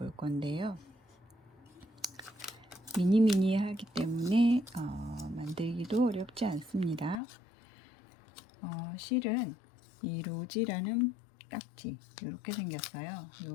건데요. 미니미니하기 때문에 만들기도 어렵지 않습니다. 실은 이 로지라는 딱지 이렇게 생겼어요.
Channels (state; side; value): drops out; right; at 7.2 s